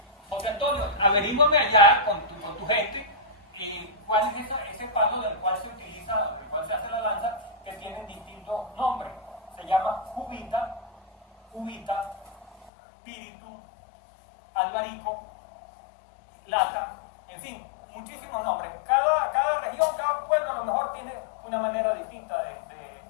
José Antonio, averígame allá con tu gente, y cuál es ese palo del cual se utiliza, del cual se hace la lanza, que tienen distintos nombres. Se llama cubita, píritu, albarico, lata, en fin, muchísimos nombres. Cada región, cada pueblo a lo mejor tiene una manera distinta de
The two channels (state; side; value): drops out; right; at 12.7 s